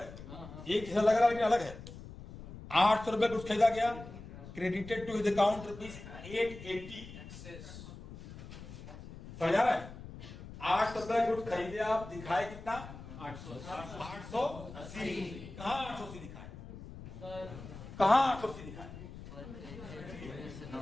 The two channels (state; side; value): noise; left; rumble, 13 dB below the sound